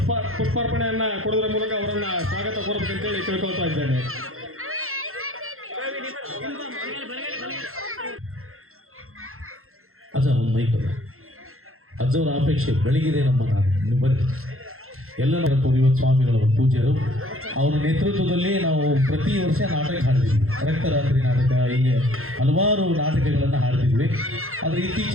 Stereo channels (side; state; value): left; late; 0.62 ms